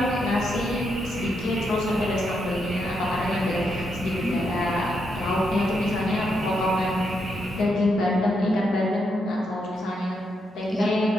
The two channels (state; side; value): normal; both; correlation 0.80